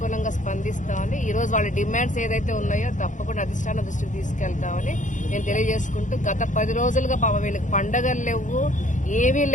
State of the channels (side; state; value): right; late; 0.36 ms